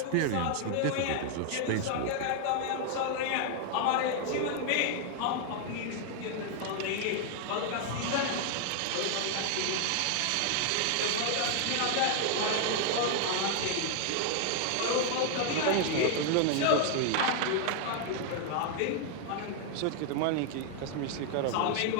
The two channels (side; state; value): both; different; correlation 0.00